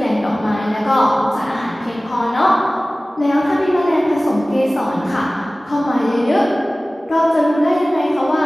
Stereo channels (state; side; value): normal; both; correlation 0.98